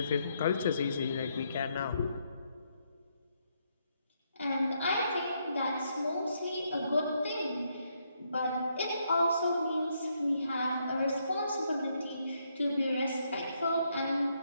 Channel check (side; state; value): both; inverted; correlation -0.76